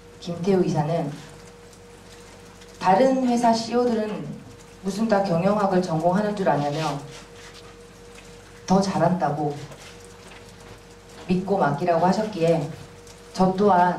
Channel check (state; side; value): identical; both; correlation 1.00